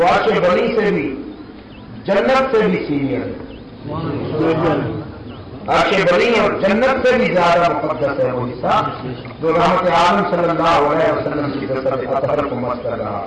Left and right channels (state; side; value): identical; both; correlation 1.00